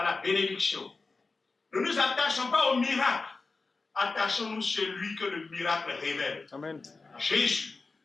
la bénédiction. Ne nous attachons pas au miracle. Attachons-nous celui que le miracle révèle. Amen. Jésus,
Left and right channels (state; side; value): quieter; right; 3.9 dB